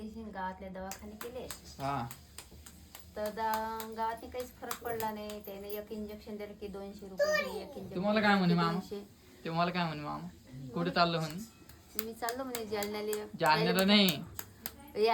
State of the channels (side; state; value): both; identical; correlation 1.00